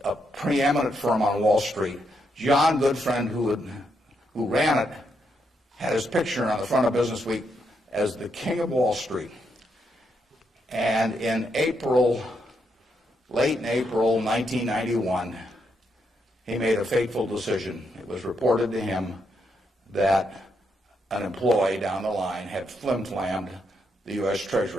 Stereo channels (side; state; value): both; normal; correlation 0.79